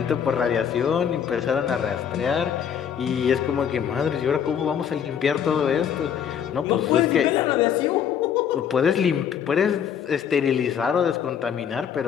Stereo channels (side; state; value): right; quieter; 8.3 dB